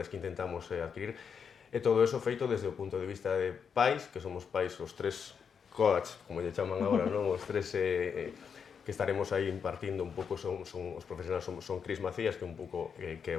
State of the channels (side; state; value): right; quieter; 6.7 dB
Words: que intentamos adquirir. E todo eso feito desde o punto de vista de pais, que somos pais os tres coach, como lle chaman agora, non? Os tres que estaremos aí impartindo un pouco son os profesionais, son Cris Macías, que é un pouco que é